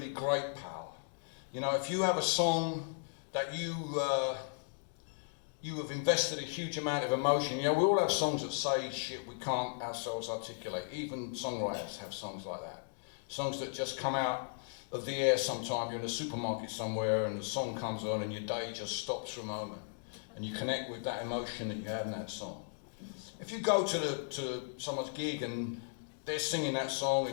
great power. You know, if you have a song that you have invested a huge amount of emotion, you know, we all have songs that say shit we can't ourselves articulate. Even songwriters have songs like that. Songs that just come out of the air sometime. You're in a supermarket somewhere and the song comes on and your day just stops for a moment. And you connect with that emotion that you had in that song. If you go to someone's gig and they're singing that song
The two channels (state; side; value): silent; right; digital silence